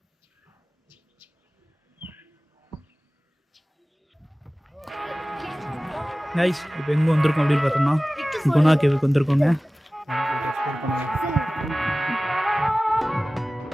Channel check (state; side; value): normal; both; correlation 0.97